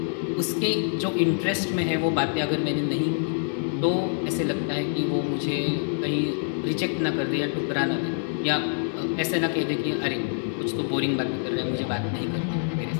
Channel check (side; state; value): right; silent; 56 dB below the other